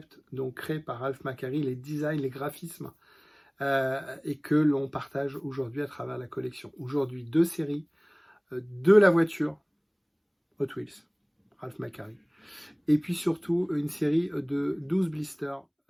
donc créés par Ralph McQuarrie, les designs, les graphismes, et que l'on partage aujourd'hui à travers la collection. Aujourd'hui, deux séries de la voiture Hot Wheels, Ralph McQuarrie, et puis surtout une série de 12 blisters.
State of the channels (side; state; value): both; identical; correlation 1.00